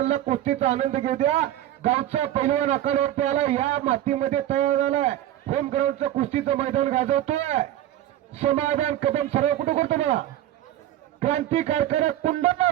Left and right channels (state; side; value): quieter; left; 12.9 dB